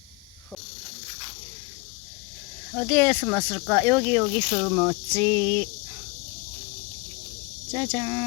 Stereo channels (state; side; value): quieter; right; 26.9 dB